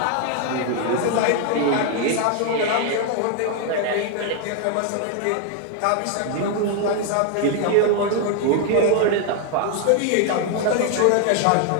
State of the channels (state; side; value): different; both; correlation 0.00